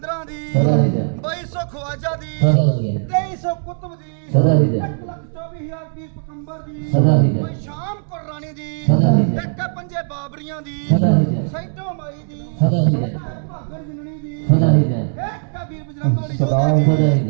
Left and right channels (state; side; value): silent; left; 66 dB below the other